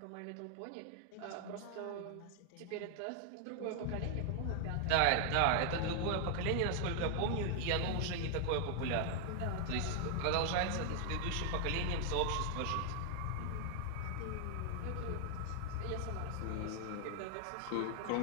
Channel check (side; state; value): both; different; correlation 0.00